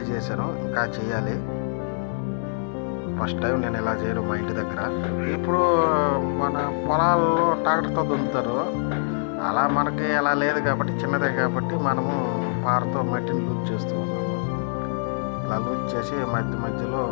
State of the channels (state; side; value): silent; right; digital silence